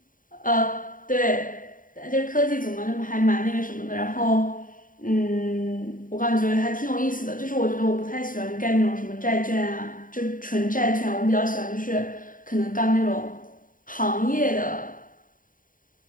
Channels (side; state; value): right; late; 0.39 ms